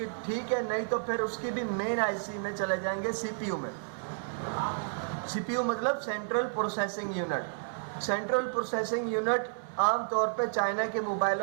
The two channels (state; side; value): silent; left; 57 dB below the other